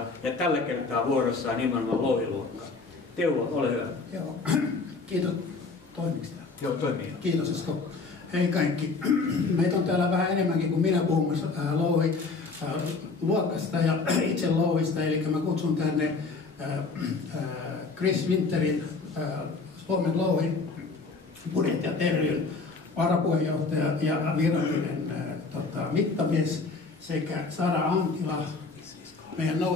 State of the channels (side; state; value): right; quieter; 4.1 dB